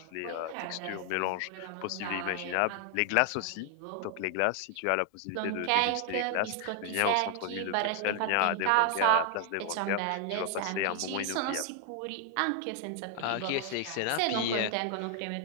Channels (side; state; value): both; different; correlation 0.00